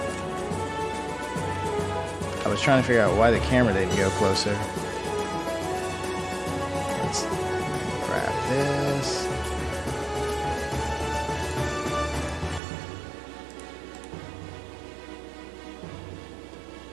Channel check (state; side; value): drops out; left; at 12.6 s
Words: I was trying to figure out why the camera didn't go closer. Let's grab this.